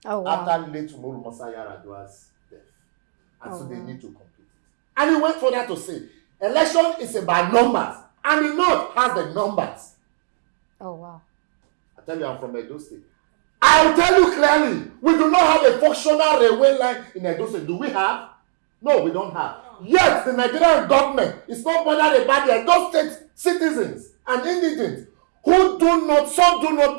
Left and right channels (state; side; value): silent; left; digital silence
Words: Oh, wow. After late Umaru Musa Yar'Adua's death. And so they need to complete it. And he went further to say, election is about numbers. And the north has the numbers. Oh, wow. I tell you, I'm from Edo State. I'll tell you clearly, we do not have a functional railway line in Edo State. Do we have? No, we don't have. Yet, the Nigerian government is not bothered about the Edo State citizens and indigents who some do not